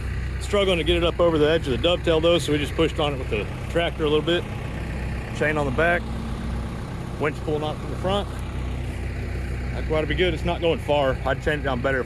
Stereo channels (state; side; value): identical; both; correlation 1.00